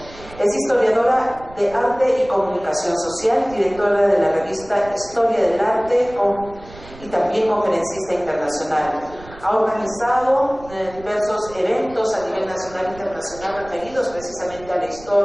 Es historiadora de arte y comunicación social, directora de la revista Historia del Arte y también conferencista internacional. Ha organizado diversos eventos a nivel nacional e internacional referidos precisamente a la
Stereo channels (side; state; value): right; noise; rumble, 19 dB below the sound